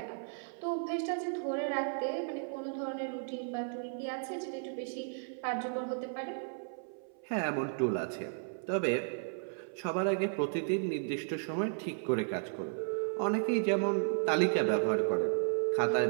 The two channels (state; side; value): silent; left; 55 dB below the other